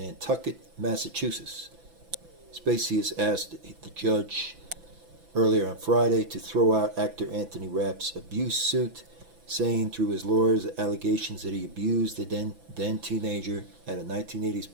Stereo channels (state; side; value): late; left; 6.0 ms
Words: Massachusetts. Spacey has asked the judge earlier on Friday to throw out actor Anthony Rapp's abuse suit, saying through his lawyers the allegations that he abused the then teenager at a